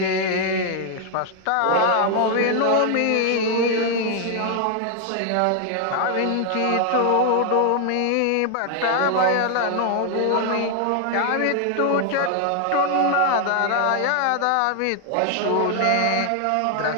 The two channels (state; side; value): different; both; correlation 0.00